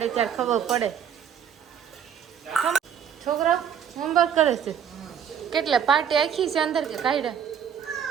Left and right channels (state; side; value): quieter; left; 8.3 dB